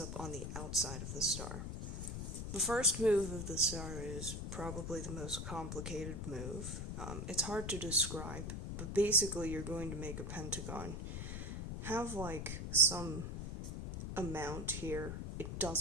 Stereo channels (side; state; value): left; noise; rumble, 5 dB below the sound